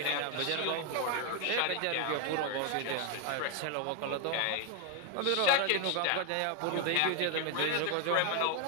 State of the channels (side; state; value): both; different; correlation 0.01